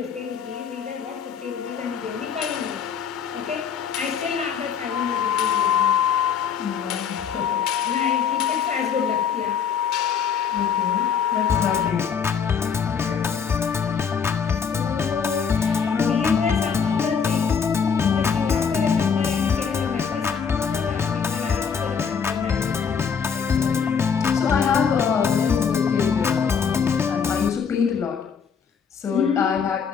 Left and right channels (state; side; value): quieter; right; 6.8 dB